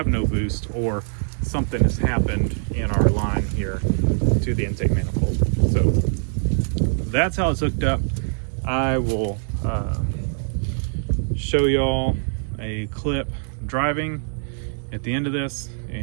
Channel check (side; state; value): left; silent; 63 dB below the other